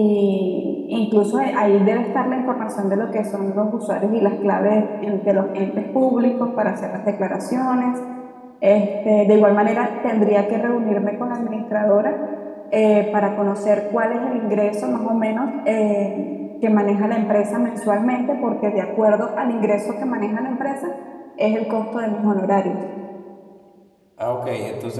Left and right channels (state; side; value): identical; both; correlation 1.00